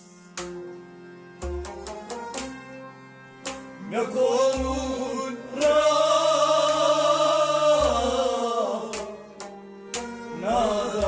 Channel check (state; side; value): identical; both; correlation 1.00